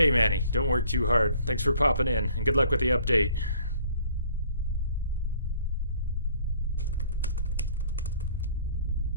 Manny, don't work too hard. Thanks for popping in, and good luck with the update.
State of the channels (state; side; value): inverted; both; correlation -0.57